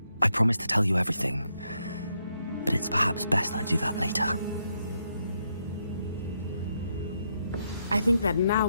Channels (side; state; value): both; inverted; correlation -0.79